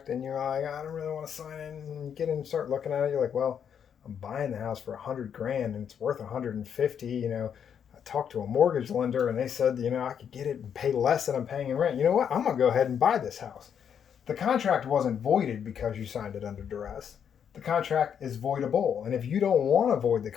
and you're like, I don't really want to sign it, and you get in and start looking at it, you're like, well, I'm buying the house for $100,000 and it's worth $150,000. I talked to a mortgage lender and they said, I could get it and pay less than I'm paying in rent. You know what? I'm going to go ahead and buy this house. The contract wasn't voided because you signed it under duress. The contract is voidable. And if you don't want to void the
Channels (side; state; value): right; quieter; 8.1 dB